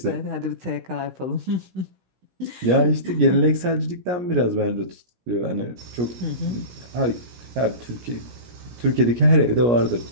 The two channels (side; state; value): left; late; 17 ms